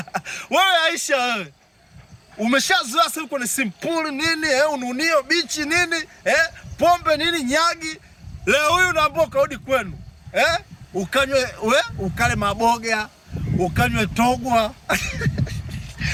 wewe Aisha, wewe umeshazoea sasa uko ni simpuli nini, ununio bichi nini, pombe nini, nyagi. Leo huyu unaambiwa karudi kwenu, ukanywe ukale maboga, ukanywe togwa.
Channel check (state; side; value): identical; both; correlation 1.00